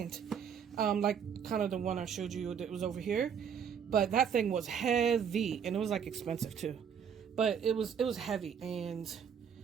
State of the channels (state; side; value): quieter; left; 7.6 dB